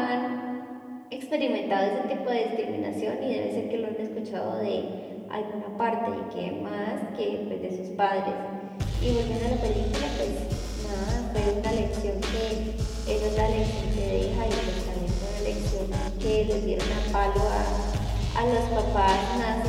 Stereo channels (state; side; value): identical; both; correlation 1.00